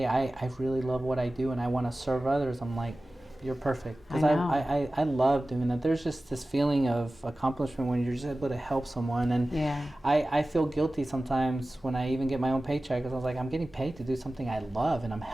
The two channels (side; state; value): both; normal; correlation 0.96